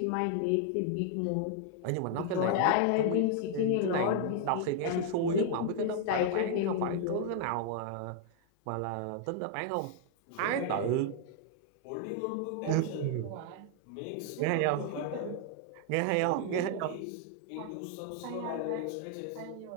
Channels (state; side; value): different; both; correlation 0.00